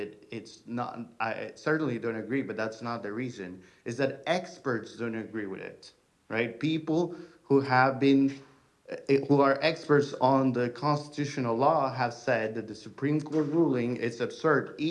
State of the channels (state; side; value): identical; both; correlation 1.00